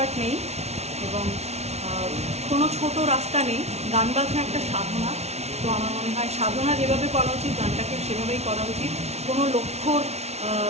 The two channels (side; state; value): left; late; 0.31 ms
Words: নেই এবং কোনো ছোট রাস্তা নেই। গান বাজনা একটা সাধনা। তো আমার মনে হয় সাধনা যেভাবে করা উচিত গানটাকে সেভাবেই করা উচিত। কোনো লক্ষ্যর